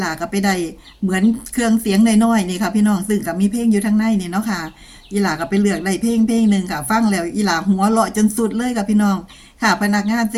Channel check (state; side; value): identical; both; correlation 1.00